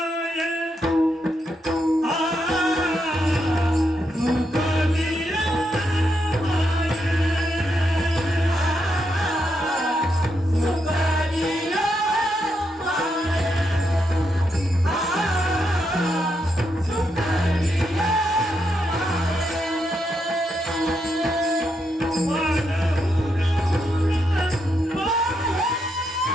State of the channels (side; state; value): both; normal; correlation 0.81